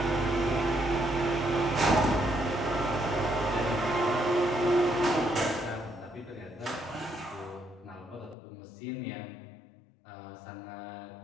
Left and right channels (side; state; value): right; drops out; at 8.3 s